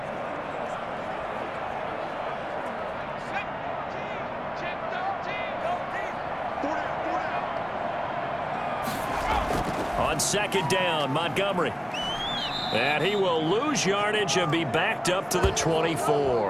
On 2nd down, Montgomery. And he will lose yardage and be backed up to the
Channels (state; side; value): identical; both; correlation 1.00